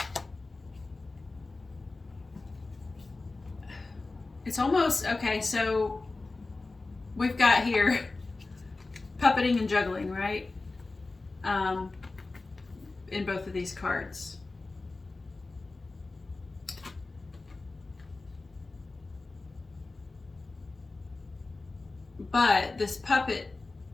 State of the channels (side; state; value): right; quieter; 3.5 dB